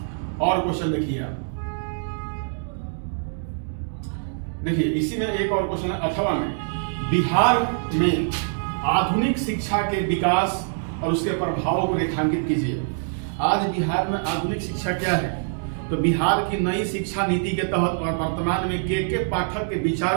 और क्वेश्चन देखिए आप, देखिए इसी में एक और क्वेश्चन है 8वां में, बिहार में आधुनिक शिक्षा के विकास और उसके प्रभावों को रेखांकित कीजिए। आज बिहार में आधुनिक शिक्षा क्या है? तो बिहार की नई शिक्षा नीति के तहत और वर्तमान में के पाठक के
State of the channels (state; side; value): silent; left; digital silence